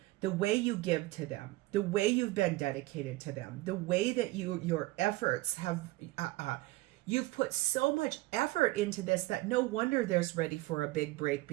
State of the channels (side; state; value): left; quieter; 19.1 dB